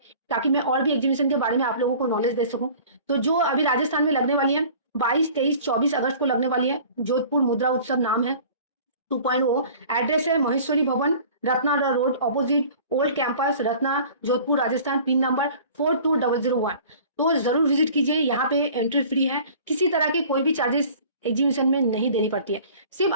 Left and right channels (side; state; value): both; inverted; correlation -0.46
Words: ताकि मैं और भी एग्जीबिशन के बारे में आप लोगों को नॉलेज दे सकूं। तो जो अभी राजस्थान में लगने वाली है 22, 23, 24 अगस्त को लगने वाली है, जोधपुर मुद्रा उत्सव नाम है, 2.0। एड्रेस है महेश्वरी भवन, Ratna road, opposite old campus, Ratna, Jodhpur, Rajasthan. Pin number 42001। तो जरूर विजिट कीजिए, यहाँ पे एंट्री फ्री है, किसी तरह के कोई भी चार्जेस एग्जीबिशन में नहीं देनी पड़ती है। सिर्फ